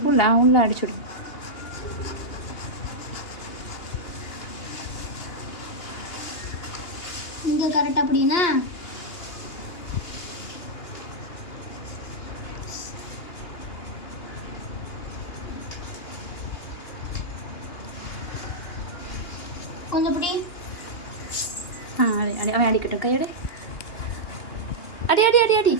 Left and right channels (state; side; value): late; right; 2.8 ms